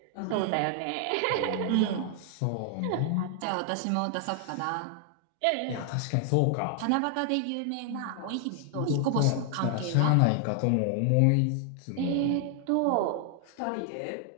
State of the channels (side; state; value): both; different; correlation 0.00